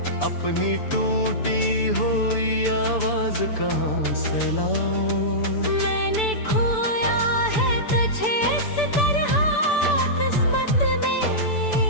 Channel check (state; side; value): late; right; 6.9 ms